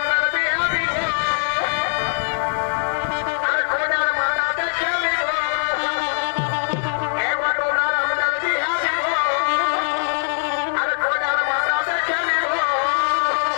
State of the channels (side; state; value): right; silent; 55 dB below the other